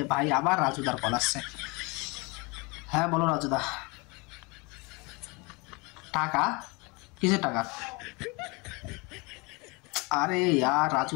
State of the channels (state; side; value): quieter; right; 27.7 dB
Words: ভাই আবার রাজুদার কল আসছে। হ্যাঁ বলো রাজুদা। টাকা? কিসের টাকা? আরে यार